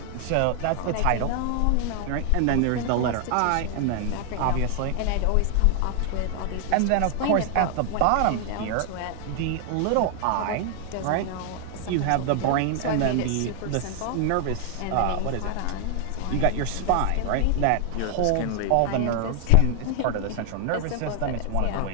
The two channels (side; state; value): both; different; correlation 0.00